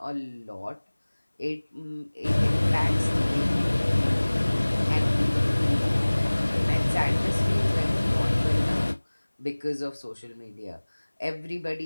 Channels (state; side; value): inverted; both; correlation -1.00